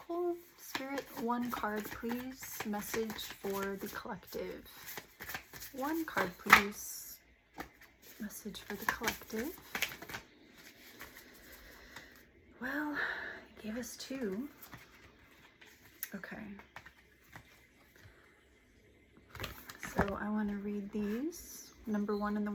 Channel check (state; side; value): identical; both; correlation 1.00